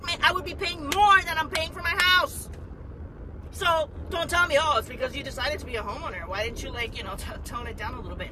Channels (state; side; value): identical; both; correlation 1.00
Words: I would be paying more than I'm paying for my house. So don't tell me, oh, it's because you decided to be a homeowner. Why didn't you, like, tone it down a little bit